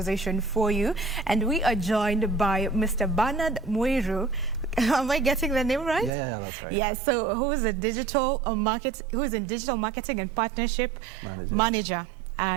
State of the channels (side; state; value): left; drops out; at 6.1 s